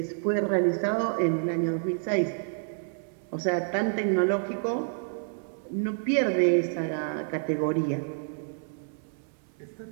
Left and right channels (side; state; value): left; silent; 59 dB below the other